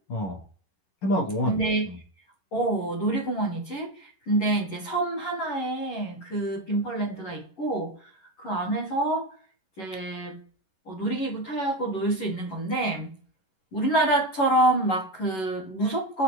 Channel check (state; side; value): late; right; 11 ms